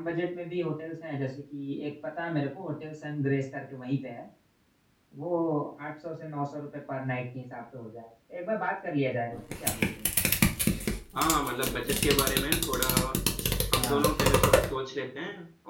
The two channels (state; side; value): identical; both; correlation 1.00